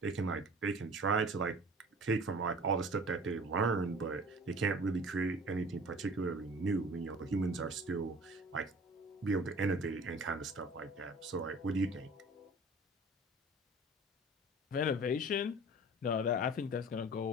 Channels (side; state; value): both; normal; correlation 0.44